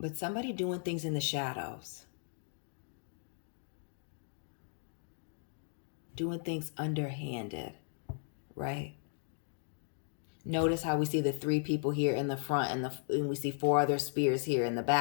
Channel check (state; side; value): silent; right; digital silence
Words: somebody doing things in the shadows. Doing things underhanded, right? Notice how we see the 3 people here in the front and we see 4 other spears here in the